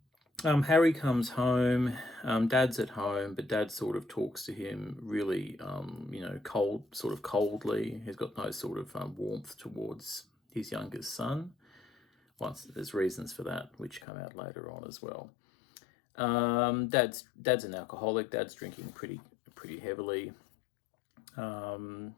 Harry comes home. Dad's at home, but Dad sort of talks to him really, coldly. He's got no sort of warmth towards his youngest son. There's reasons for that, which come out later on as well. Dad's an alcoholic. Dad's drinking pretty heavily.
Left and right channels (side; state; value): right; drops out; at 14.0 s